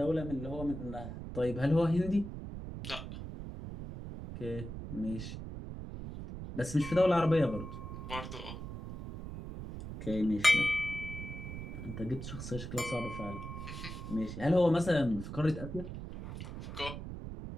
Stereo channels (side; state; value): right; noise; rumble, 8 dB below the sound